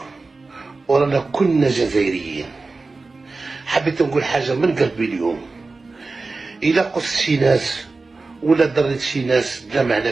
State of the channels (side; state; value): left; quieter; 3.7 dB